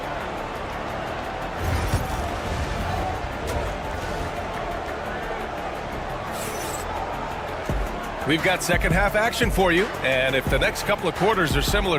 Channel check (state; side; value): identical; both; correlation 1.00